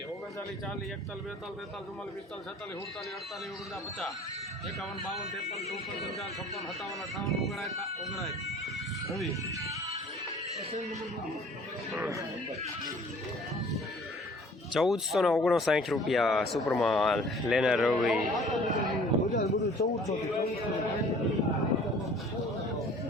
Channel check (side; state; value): both; normal; correlation 0.51